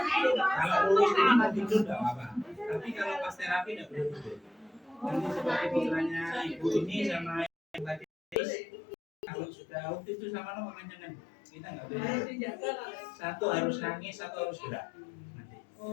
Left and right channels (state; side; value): drops out; right; at 8.3 s